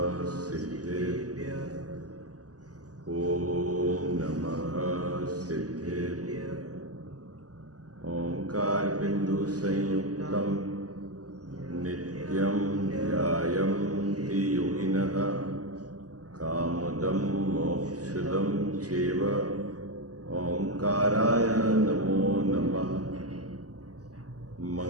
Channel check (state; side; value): late; left; 0.67 ms